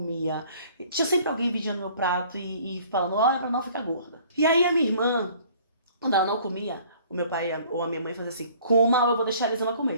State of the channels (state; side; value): inverted; both; correlation -0.54